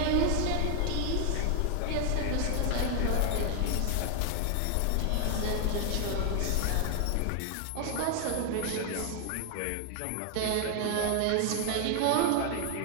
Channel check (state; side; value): different; both; correlation 0.00